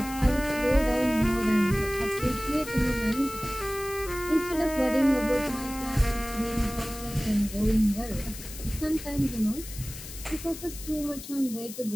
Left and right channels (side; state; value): left; noise; hiss, 13 dB below the sound